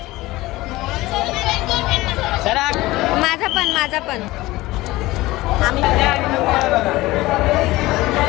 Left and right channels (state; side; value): quieter; right; 18.9 dB